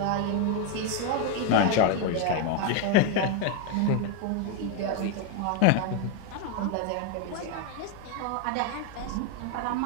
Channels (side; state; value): both; different; correlation 0.01